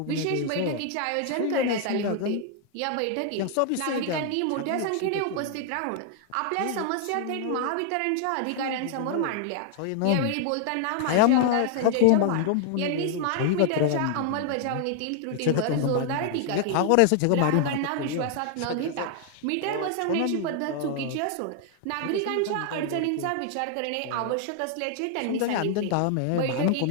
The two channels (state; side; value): different; both; correlation 0.00